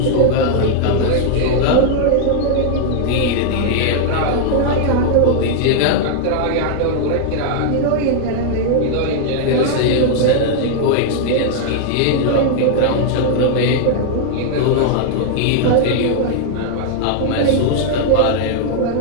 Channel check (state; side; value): different; both; correlation -0.01